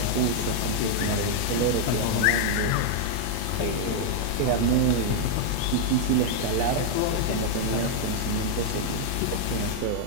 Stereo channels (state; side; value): different; both; correlation 0.00